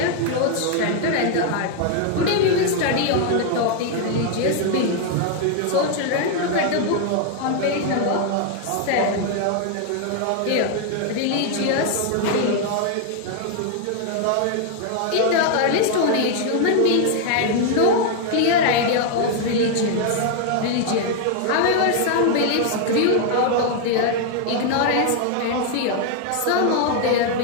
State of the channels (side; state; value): both; different; correlation 0.00